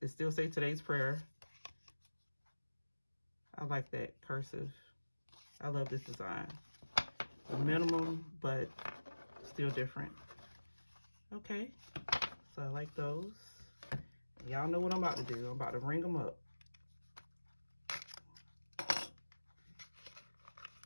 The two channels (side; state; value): both; inverted; correlation -1.00